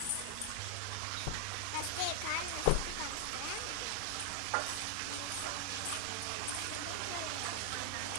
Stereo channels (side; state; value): both; different; correlation 0.00